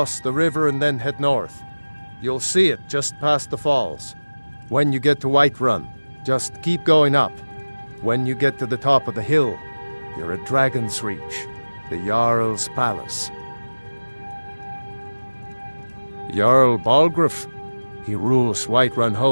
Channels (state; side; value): inverted; both; correlation -1.00